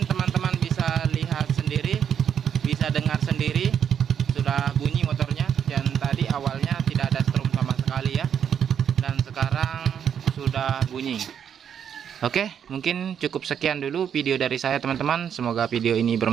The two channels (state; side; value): quieter; left; 8.4 dB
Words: teman-teman bisa lihat sendiri, bisa dengar sendiri, sudah bunyi motornya. Dan tadi awalnya tidak ada strum sama sekali ya, dan sekarang sudah bunyi. Oke, mungkin cukup sekian dulu video dari saya teman-teman. Semoga video ini